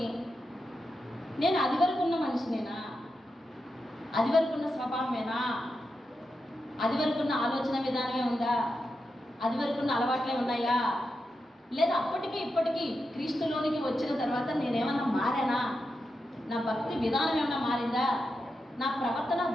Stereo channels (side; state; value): both; normal; correlation 0.88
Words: నేను అది వరకు ఉన్న మనిషినేనా? అది వరకు ఉన్న స్వభావమేనా? అది వరకు ఉన్న ఆలోచన విధానమే ఉందా? అది వరకు ఉన్న అలవాట్లే ఉన్నాయా? లేదా అప్పటికి ఇప్పటికీ క్రీస్తులోనికి వచ్చిన తర్వాత నేనేమన్నా మారానా? నా భక్తి విధానం ఏమన్నా మారిందా? నా ప్రవర్తన